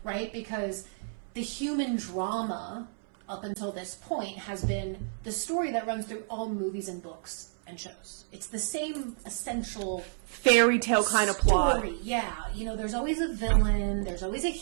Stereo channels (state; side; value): silent; left; 58 dB below the other